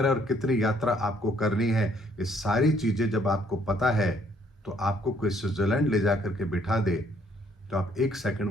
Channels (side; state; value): both; normal; correlation 0.65